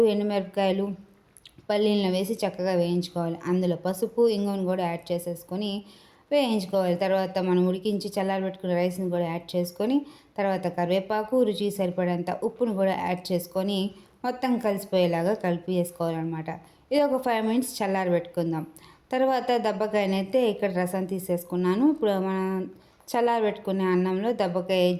ఎండుమిరపకాయలు, పల్లీలను వేసి చక్కగా వేయించుకోవాలి. అందులో పసుపు, ఇంగువను కూడా యాడ్ చేసేసుకొని వేయించుకోవాలి. తర్వాత మనం ఉడికించి చల్లారబెట్టుకున్న రైస్ని కూడా యాడ్ చేసుకొని తర్వాత కరివేపాకు, రుచికి సరిపడేంత ఉప్పును కూడా యాడ్ చేసుకొని మొత్తం కలిసిపోయేలాగా కలిపి వేసుకోవాలన్నమాట. ఇది ఒక 5 మినిట్స్ చల్లారబెట్టుకుందాం. తర్వాత దబ్బకాయనైతే ఇక్కడ రసం తీసేసుకున్నాను. ఇప్పుడు మనం చల్లారబెట్టుకునే అన్నంలో దబ్బకాయ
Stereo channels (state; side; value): identical; both; correlation 1.00